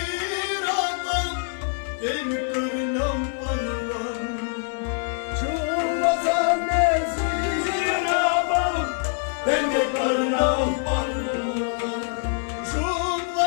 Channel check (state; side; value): silent; right; 62 dB below the other